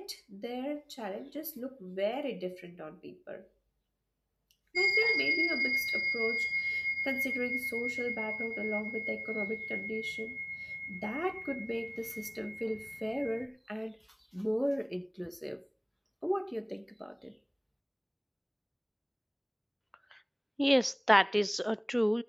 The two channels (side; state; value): both; identical; correlation 1.00